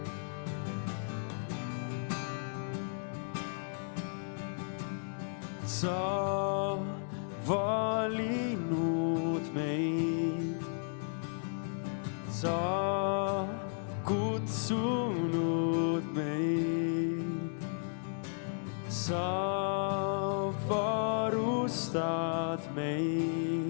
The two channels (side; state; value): right; silent; 55 dB below the other